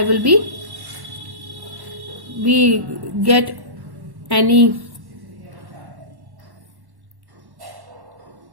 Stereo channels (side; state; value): left; late; 1.1 ms